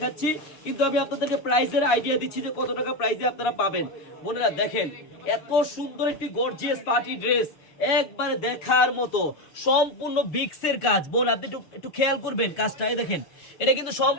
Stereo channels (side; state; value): right; late; 6.6 ms